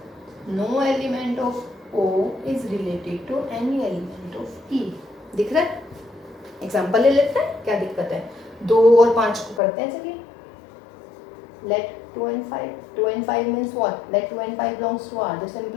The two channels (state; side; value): drops out; right; at 9.6 s